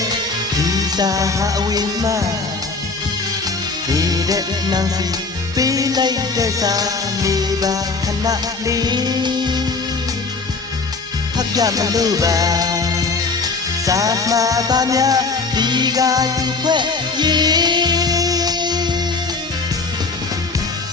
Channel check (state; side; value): quieter; right; 4.1 dB